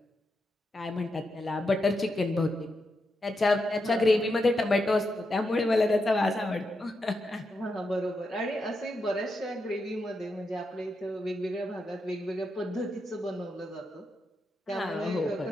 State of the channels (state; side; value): normal; both; correlation 0.85